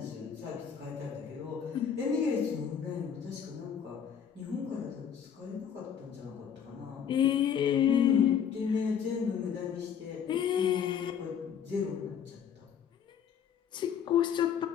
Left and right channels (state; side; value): quieter; right; 8.1 dB